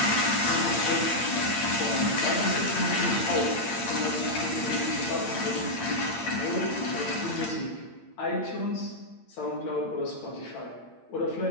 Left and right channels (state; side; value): late; right; 8.7 ms